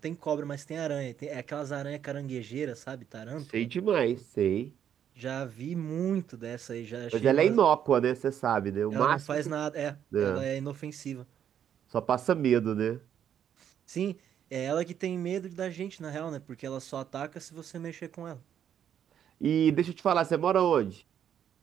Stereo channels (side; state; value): left; quieter; 9.3 dB